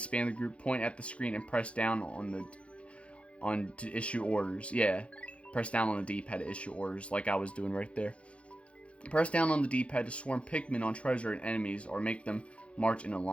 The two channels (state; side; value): late; right; 0.061 ms